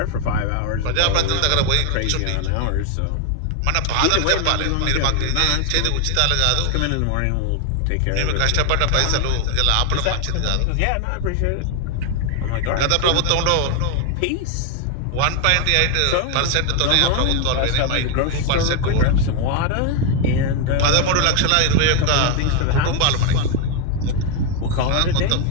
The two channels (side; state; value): both; different; correlation 0.01